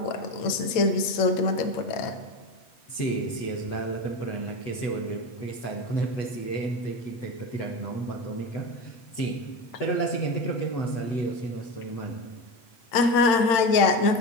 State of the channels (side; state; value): right; late; 8.2 ms